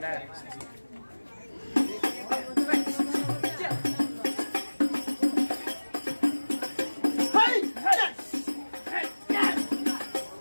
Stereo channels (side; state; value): both; inverted; correlation -1.00